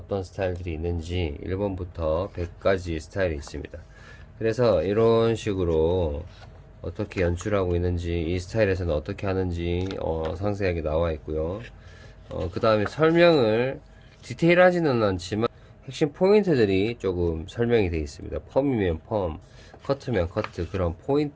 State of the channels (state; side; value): identical; both; correlation 1.00